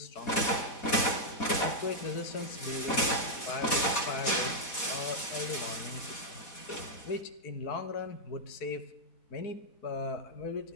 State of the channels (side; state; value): right; late; 4.1 ms